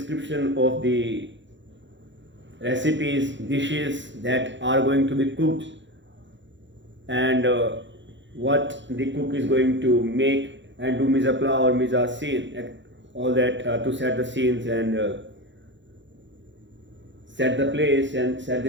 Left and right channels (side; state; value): left; late; 0.54 ms